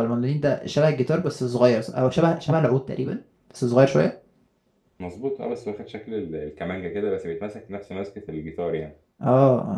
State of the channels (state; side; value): identical; both; correlation 1.00